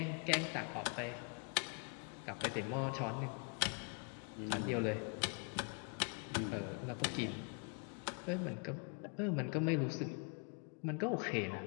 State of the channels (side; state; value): right; quieter; 37.8 dB